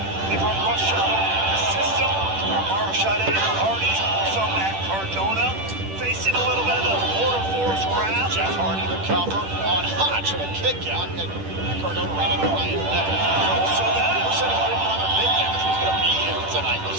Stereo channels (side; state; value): left; late; 10 ms